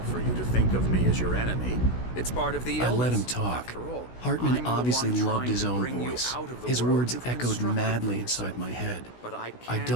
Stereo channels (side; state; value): right; late; 16 ms